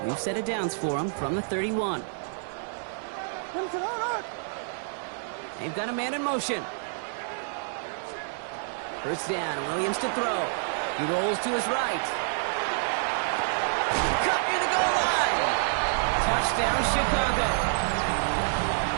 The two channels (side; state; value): left; silent; 59 dB below the other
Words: We've set it downs for them from the 31. They've got a man in motion. First down, Williams to throw. He rolls to his right. Cut near the goal line. Touchdown, Chicago.